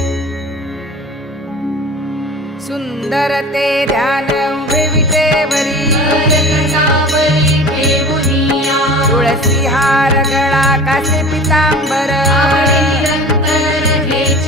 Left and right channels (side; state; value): both; normal; correlation 0.38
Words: सुंदर ते ध्यान उभे विटेवरी कटावरी ठेवुनिया तुळसी हार गळा कासे पितांबर आवडे निरंतर